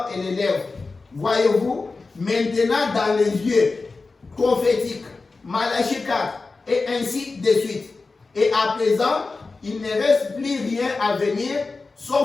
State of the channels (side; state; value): right; quieter; 3.9 dB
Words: et les lèvres. Voyez-vous, maintenant dans les yeux prophétiques, Malachie 4, et ainsi de suite. Et à présent, il ne reste plus rien à venir,